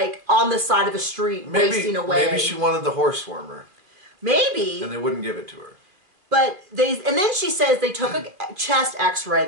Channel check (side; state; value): left; late; 2.5 ms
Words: on the side of a street wasting away. Maybe she wanted the horse warmer. Maybe. And they wouldn't give it to her. But and then she says they took a chest x-ray.